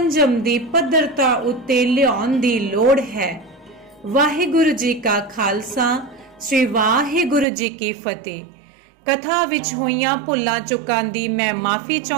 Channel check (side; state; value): left; drops out; at 7.5 s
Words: ਦੀ ਪੱਧਰਤਾ ਉੱਤੇ ਲਿਆਉਣ ਦੀ ਲੋੜ ਹੈ। ਵਾਹਿਗੁਰੂ ਜੀ ਕਾ ਖਾਲਸਾ, ਸ੍ਰੀ ਵਾਹਿਗੁਰੂ ਜੀ ਕੀ ਫਤਿਹ। ਕਥਾ ਵਿੱਚ ਹੋਈਆਂ ਭੁੱਲਾਂ ਚੁੱਕਾਂ ਦੀ ਮੈਂ ਮਾਫੀ